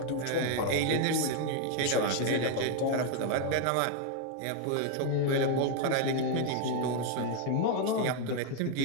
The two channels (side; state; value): both; different; correlation 0.00